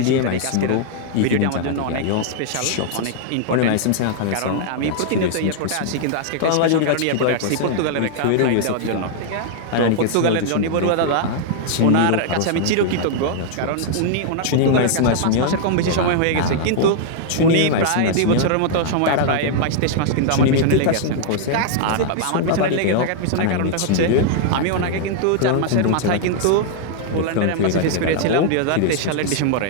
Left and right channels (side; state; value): both; different; correlation -0.01